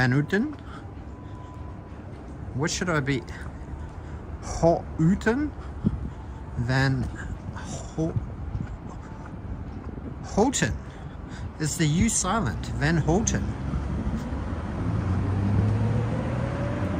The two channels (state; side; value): identical; both; correlation 1.00